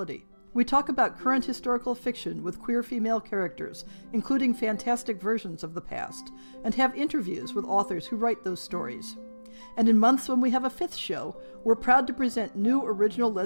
We talk about current historical fiction with queer female characters, including fantastic versions of the past, and have interviews with authors who write those stories. And in months when we have a fifth show, we're proud to present new original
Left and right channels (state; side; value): inverted; both; correlation -1.00